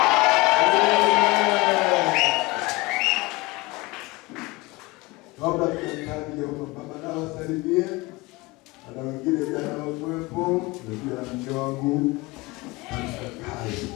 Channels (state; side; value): quieter; right; 22.9 dB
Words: Kabla tukaanza baba na wasalimie. Ana wengine jana wakuwepo, ndio na mke wangu. Kai.